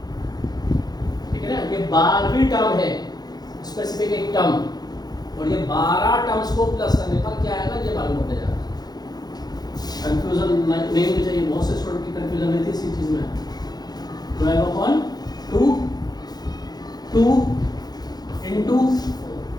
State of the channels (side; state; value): right; late; 0.19 ms